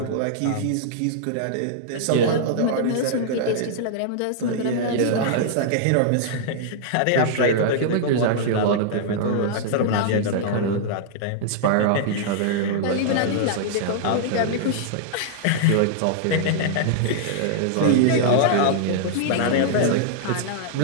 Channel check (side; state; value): both; different; correlation -0.01